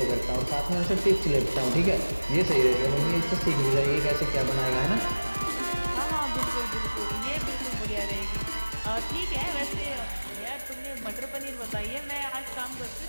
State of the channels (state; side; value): inverted; both; correlation -1.00